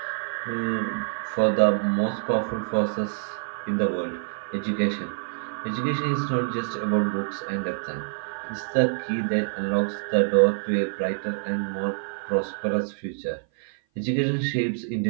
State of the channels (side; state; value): left; silent; 56 dB below the other